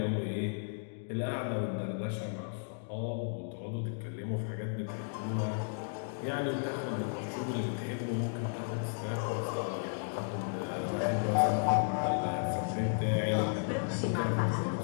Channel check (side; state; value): right; silent; digital silence